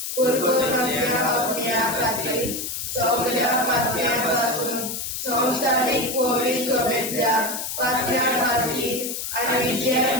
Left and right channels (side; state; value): left; noise; hiss, 5 dB below the sound